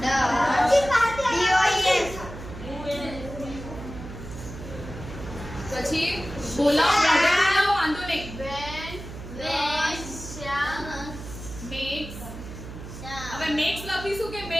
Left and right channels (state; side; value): noise; right; hum, 11 dB below the sound